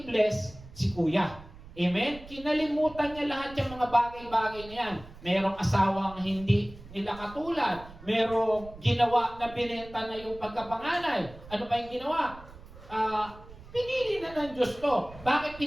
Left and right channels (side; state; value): right; noise; rumble, 18 dB below the sound